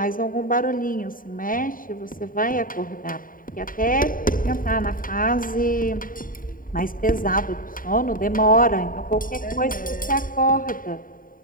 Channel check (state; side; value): late; right; 0.40 ms